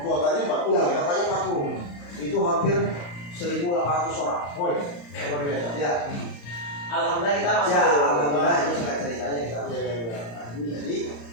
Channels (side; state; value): right; late; 35 ms